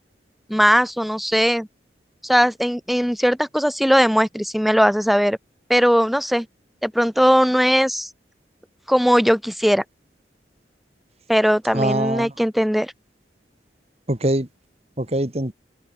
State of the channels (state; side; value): normal; both; correlation 0.97